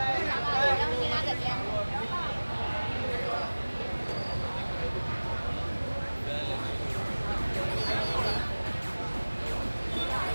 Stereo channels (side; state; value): both; inverted; correlation -1.00